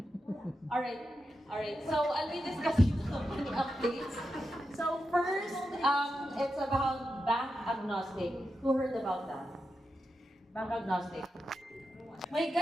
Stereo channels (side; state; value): both; normal; correlation 0.88